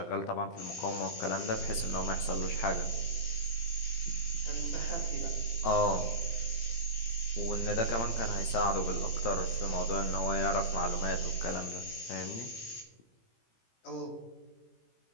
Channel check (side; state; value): right; late; 18 ms